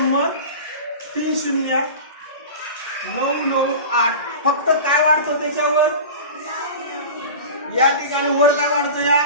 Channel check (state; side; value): inverted; both; correlation -0.33